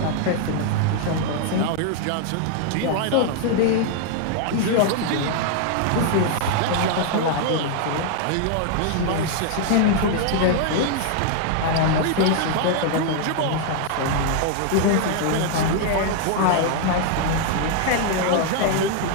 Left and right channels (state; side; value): different; both; correlation 0.00